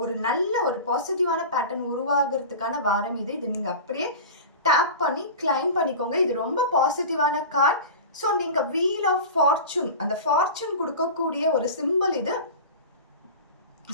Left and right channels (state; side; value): inverted; both; correlation -0.31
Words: ஒரு நல்ல ஒரு பாசிட்டிவான பேட்டர்ன் உருவாகிறதுக்கான வாரம் இது. இது நீங்கள் அப்படியே டேப் பண்ணி கிளைம் பண்ணிக்கோங்க. இது ரொம்ப பாசிட்டிவான கார்ட். ஸோ நீங்கள் வீல் ஆஃப் ஃபார்ச்சூன், அந்த ஃபார்ச்சூன் கொடுக்கக்கூடிய ஒரு சிம்பிள் இது.